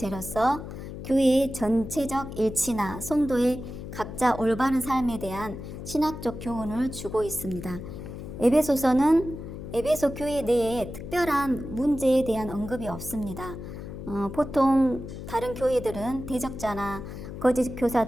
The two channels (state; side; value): noise; left; hum, 10 dB below the sound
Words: 교회의 전체적 일치나 성도의 각자 올바른 삶에 대한 신학적 교훈을 주고 있습니다. 에베소서는 에베소 교회 내에 특별한 문제에 대한 언급이 없습니다. 보통 다른 교회들은 대적자나 거짓